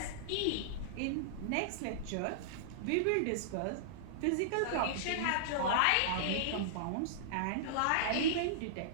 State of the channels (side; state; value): both; different; correlation -0.02